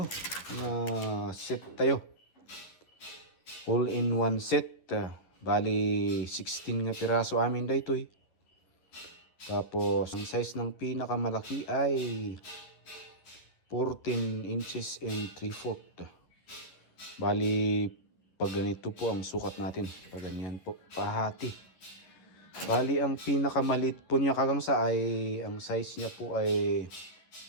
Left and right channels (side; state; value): right; late; 11 ms